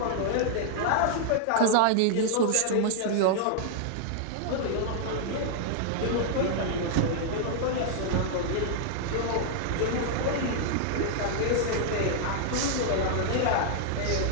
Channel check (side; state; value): both; different; correlation -0.01